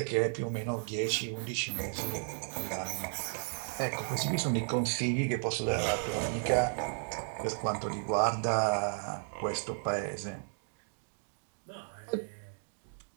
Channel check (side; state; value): left; silent; 55 dB below the other